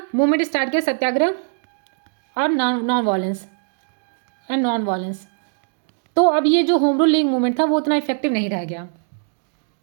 मूवमेंट स्टार्ट किया सत्याग्रह और नॉन वायलेंस। तो अब ये जो होम रूल लीग मूवमेंट था वो उतना इफेक्टिव नहीं रह गया।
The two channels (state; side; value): silent; left; 65 dB below the other